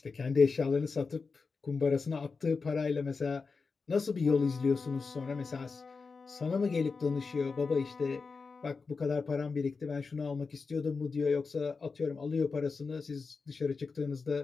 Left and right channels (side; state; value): right; quieter; 4.6 dB